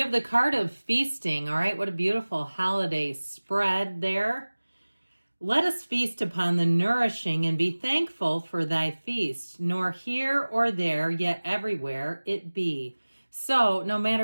have the card of feasting. All right, what a beautiful holiday spread there. Let us feast upon the nourishing and be thankful for thy feast, nor here or there, yet everywhere it be. So no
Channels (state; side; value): inverted; both; correlation -1.00